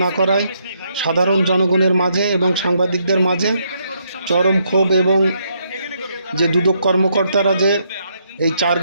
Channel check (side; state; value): both; inverted; correlation -0.74